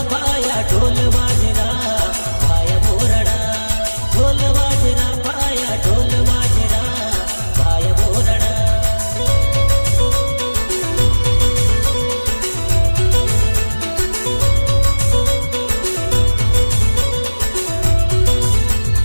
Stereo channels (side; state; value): both; inverted; correlation -1.00